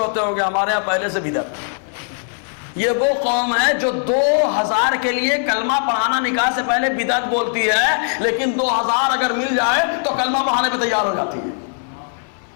ہوں گے، ہمارے یہاں پہلے سے بدعت. یہ وہ قوم ہے جو 2000 کے لیے کلمہ پڑھانا نکاح سے پہلے بدعت بولتی ہے، لیکن 2000 اگر مل جائے تو کلمہ پڑھانے پہ تیار ہو جاتی ہے.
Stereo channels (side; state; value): right; silent; digital silence